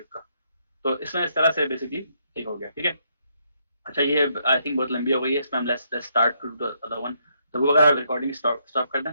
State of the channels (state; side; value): inverted; both; correlation -0.74